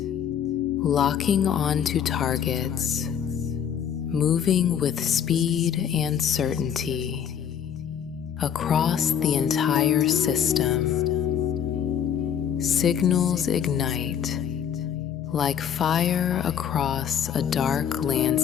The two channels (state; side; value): quieter; right; 8.6 dB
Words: locking onto targets, moving with speed and certainty across the entire system. Signals ignite like fire across a dark